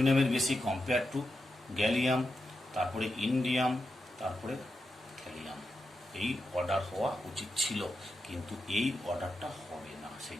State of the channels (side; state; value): both; normal; correlation 0.88